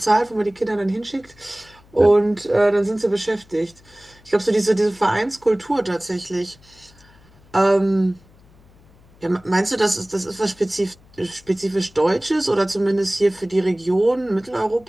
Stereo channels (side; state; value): left; noise; hum, 28 dB below the sound